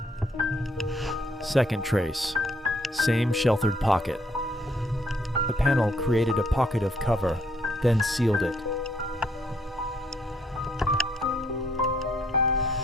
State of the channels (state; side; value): normal; both; correlation 0.69